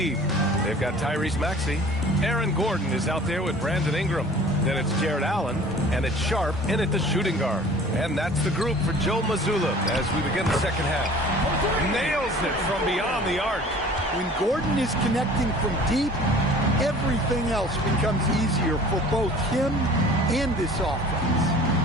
They've got Tyrese Maxey. Aaron Gordon is out there with Brandon Ingram. Then it's Jared Allen, and it's Sharp in at the shooting guard. And that's the group for Joe Mazzulla as we begin the second half. Nails it from beyond the arc. When Gordon is connecting from deep, everything else becomes easier for both him and this offense.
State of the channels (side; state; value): both; normal; correlation 0.46